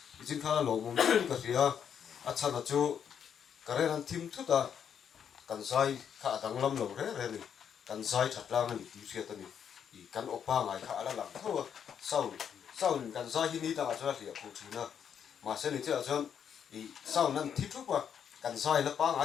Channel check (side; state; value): right; quieter; 8.1 dB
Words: i chin kha lo mum ka ria a chan a chu kare ran thim thu ta kan sai kha dang lam lo re re ni kan sai that lang ni ti ria ta ni i kan opa ngai kha ala lang tho sau kan sai hi ni ta ga cha ria khu thina ma se ni cha jon i sau nan thi thu pa kan sai la pa